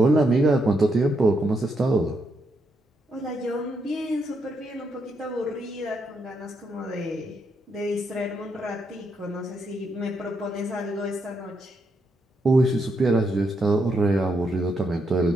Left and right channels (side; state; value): both; normal; correlation 0.79